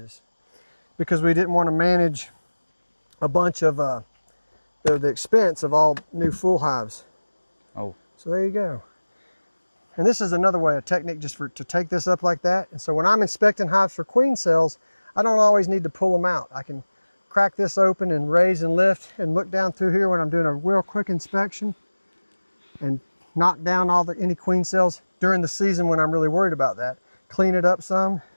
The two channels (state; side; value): inverted; both; correlation -1.00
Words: because we didn't want to manage a bunch of the expense of all new full hives. Oh. So there you go. And this is another way, a technique just to take this up like that. And so when I'm inspecting hives for queen cells, I don't always need to pull them out. I can crack this open and raise and lift and look down through here when I'm doing a real quick inspection and knock down any queen cells during the season when I'm really worried about that. Clean it up some,